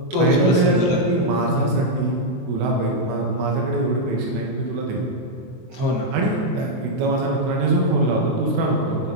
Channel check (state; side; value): late; left; 24 ms